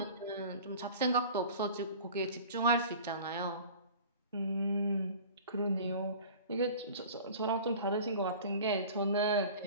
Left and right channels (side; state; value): both; inverted; correlation -0.42